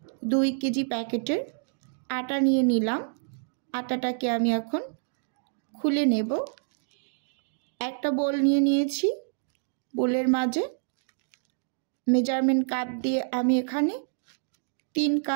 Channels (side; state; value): left; silent; digital silence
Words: 2 কেজি প্যাকেটের আটা নিয়ে নিলাম। আটাটাকে আমি এখন খুলে নেব। একটা বোল নিয়ে নিয়েছি, বোলের মাঝে মেজারমেন্ট কাপ দিয়ে আমি এখানে 3